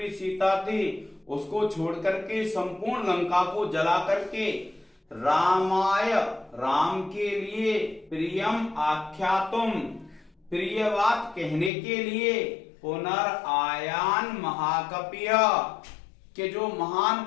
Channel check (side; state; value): right; drops out; at 11.7 s